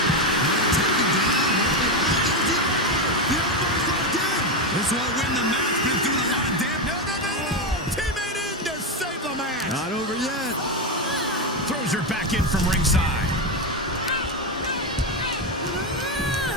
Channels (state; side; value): normal; both; correlation 0.10